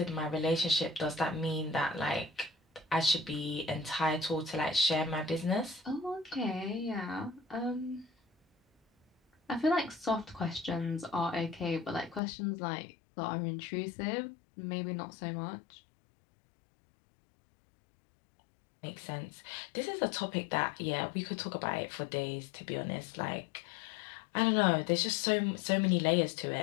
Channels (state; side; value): drops out; right; at 12.2 s